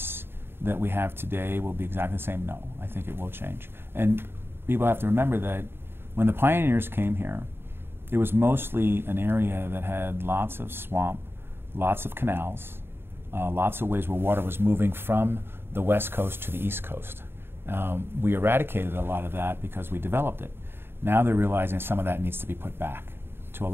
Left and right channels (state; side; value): late; left; 0.11 ms